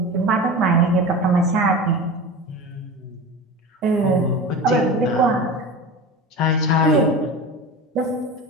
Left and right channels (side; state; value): both; normal; correlation 0.30